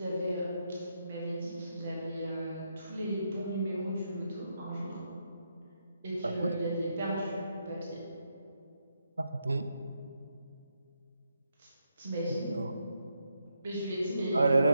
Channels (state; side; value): inverted; both; correlation -0.81